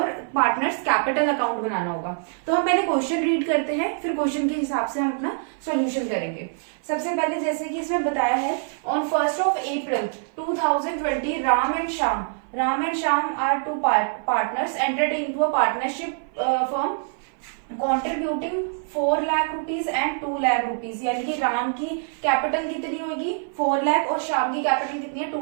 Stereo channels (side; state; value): left; silent; 57 dB below the other